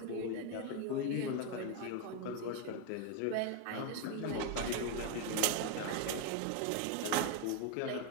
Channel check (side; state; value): both; different; correlation 0.01